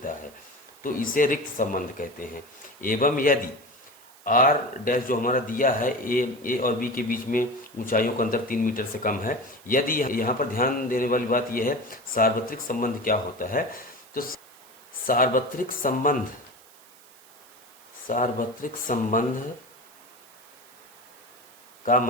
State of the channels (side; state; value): right; noise; hiss, 25 dB below the sound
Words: है तो इसे रिक्त संबंध कहते हैं। एवं यदि आर डैश जो हमारा दिया है ए और बी के बीच में ऊंचाइयों का अंतर 3 मीटर से कम है, यदि यहाँ पर ध्यान देने वाली बात यह है सार्वत्रिक संबंध क्या होता है। तो सार्वत्रिक संबंध का